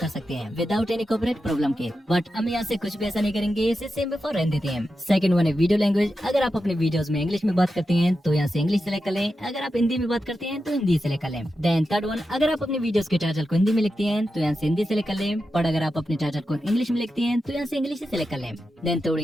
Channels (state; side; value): normal; both; correlation 0.90